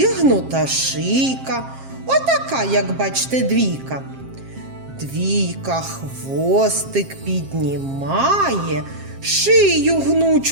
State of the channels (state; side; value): late; left; 7.5 ms